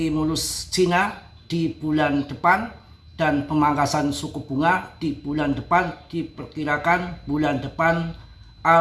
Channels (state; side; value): identical; both; correlation 1.00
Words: Cina di bulan depan dan pemangkasan suku bunga di bulan depan. Diperkirakan bulan depan